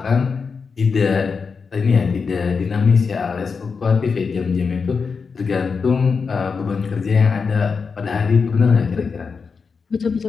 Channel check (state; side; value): quieter; right; 5.3 dB